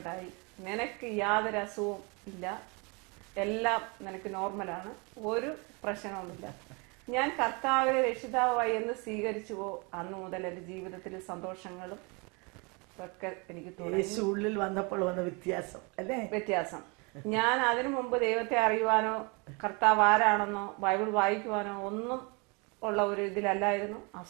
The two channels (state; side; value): quieter; left; 30.6 dB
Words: നിനക്ക് യാതൊരു അസുഖവും ഇല്ല, എല്ലാം നിനക്ക് നോർമലാണ്, ഒരു പ്രശ്നവുമില്ല. ഞാൻ കർത്താവിനെ രക്ഷിതാവായി എന്ന് സ്വീകരിച്ചുവോ അന്ന് മുതൽ എൻ്റെ ജീവിതത്തിൽ സന്തോഷങ്ങളും ഒക്കെ എനിക്ക് ഉള്ളിൽ വന്നപ്പോൾ വന്ന വ്യത്യാസം. ഞാൻ അതിനു മുമ്പ് ദൈവത്തെ അറിയുവാനോ കർത്താവ് ആരാണെന്നോ ബൈബിൾ വായിക്കുവാനോ ഒന്നും ഉള്ള ഒരു ഇതിലല്ലായിരുന്നു.